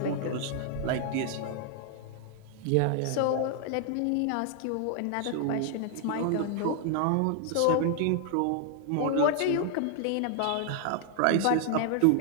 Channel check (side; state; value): both; different; correlation 0.00